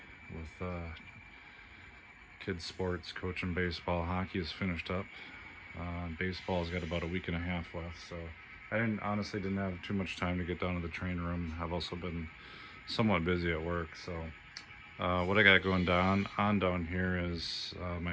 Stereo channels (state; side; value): identical; both; correlation 1.00